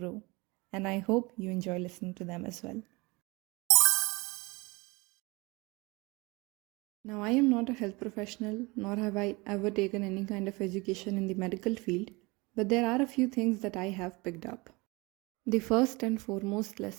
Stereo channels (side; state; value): left; quieter; 25.1 dB